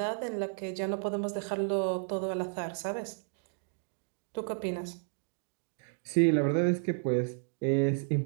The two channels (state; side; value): silent; left; digital silence